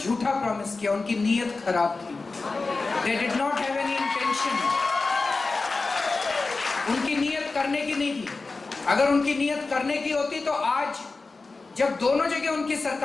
प्रॉमिस किया। उनकी नीयत खराब थी। They did not have any intention. उनकी नीयत करने की नहीं थी। अगर उनकी नीयत करने की होती तो आज जब दोनों जगह उनकी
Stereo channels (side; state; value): right; quieter; 3.8 dB